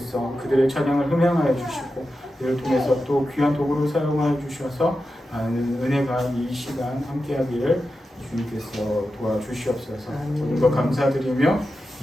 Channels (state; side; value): normal; both; correlation 0.91